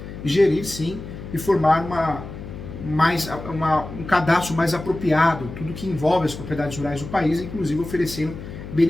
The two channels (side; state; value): left; noise; hum, 11 dB below the sound